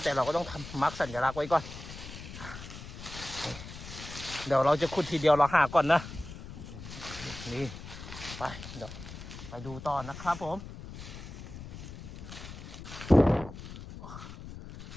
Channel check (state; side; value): noise; left; rumble, 12 dB below the sound